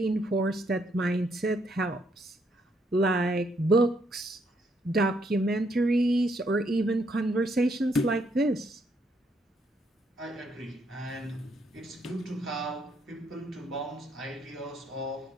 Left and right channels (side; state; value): both; normal; correlation 0.73